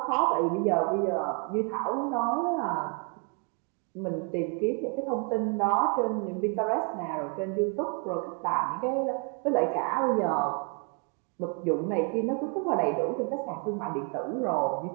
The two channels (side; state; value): left; quieter; 34.6 dB